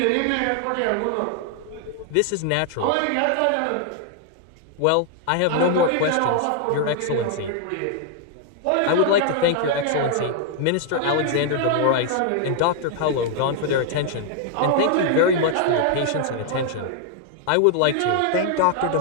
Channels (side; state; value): both; different; correlation 0.00